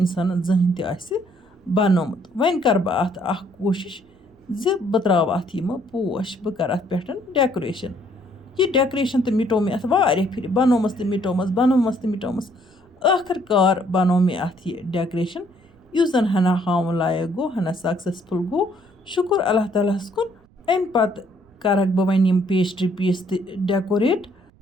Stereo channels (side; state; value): right; noise; rumble, 30 dB below the sound